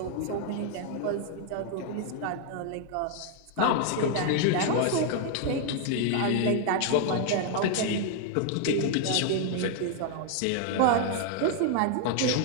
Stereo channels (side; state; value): both; different; correlation 0.00